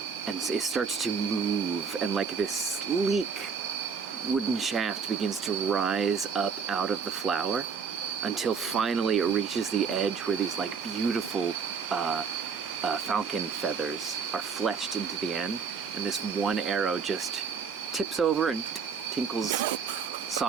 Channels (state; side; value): quieter; left; 6.0 dB